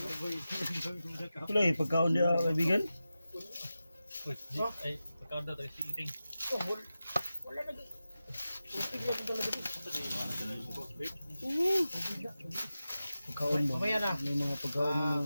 Ito lang pagkaon niya kaibigan. Uy, ay, pagkaon daw tayo si Ting. Pagkaon ba? Mamaya na. May mga pagkaon ng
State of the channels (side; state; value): both; inverted; correlation -0.93